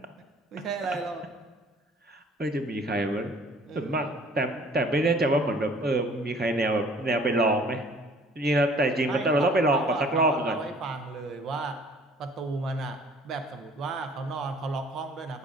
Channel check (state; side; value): normal; both; correlation 0.53